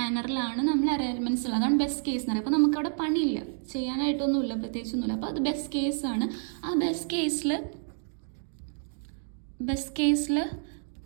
നമ്മൾ അറേ എലമെൻറ്റ്സ് ഉള്ളത്. അതാണ് ബെസ്റ്റ് കേസ് എന്ന് പറയുക. അപ്പോൾ നമുക്കവിടെ പണിയില്ല, ചെയ്യാനായിട്ടൊന്നുമില്ല, പ്രത്യേകിച്ചൊന്നുമില്ല. അപ്പോൾ അത് ബെസ്റ്റ് കേസാണ്. ആ ബെസ്റ്റ് കേസിൽ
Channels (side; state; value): left; silent; digital silence